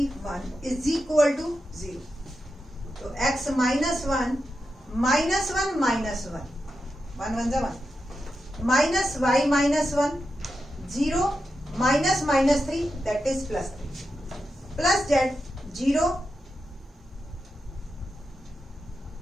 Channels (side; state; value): both; normal; correlation 0.88